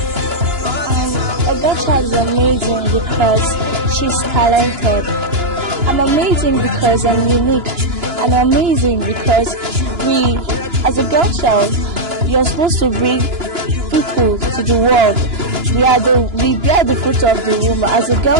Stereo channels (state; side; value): late; left; 2.9 ms